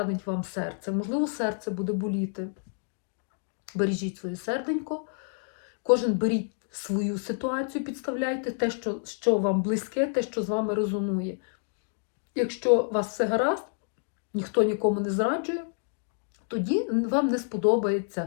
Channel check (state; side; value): silent; right; 59 dB below the other